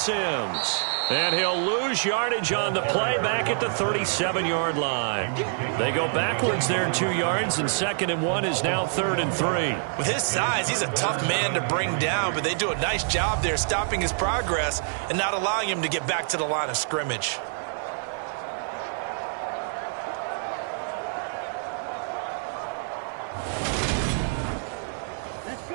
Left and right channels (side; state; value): left; silent; 55 dB below the other